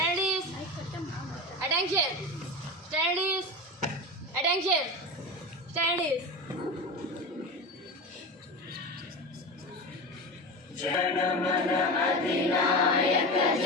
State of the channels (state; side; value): normal; both; correlation 0.25